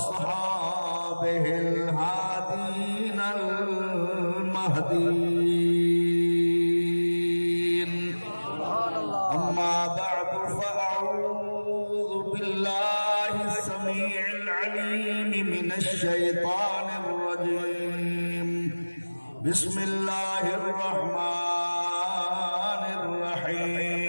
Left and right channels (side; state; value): both; inverted; correlation -1.00